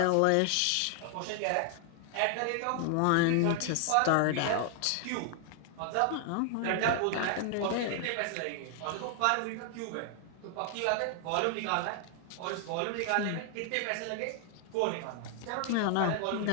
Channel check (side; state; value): both; different; correlation 0.00